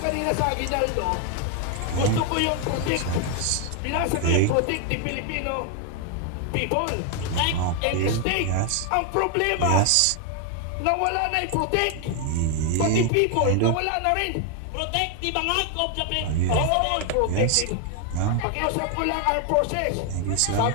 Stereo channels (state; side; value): different; both; correlation 0.01